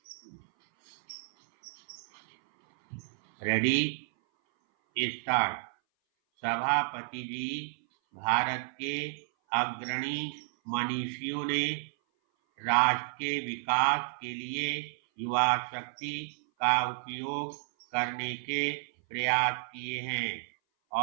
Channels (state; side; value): silent; left; 57 dB below the other